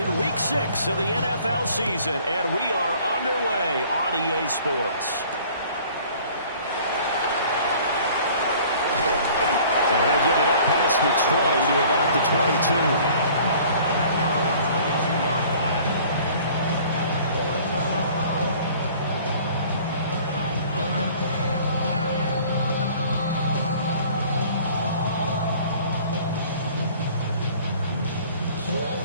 Week 6 of the NFL season, and we are underway on EA Sports. They'll get it up past the 20 to about the 22.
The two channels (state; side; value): inverted; both; correlation -0.51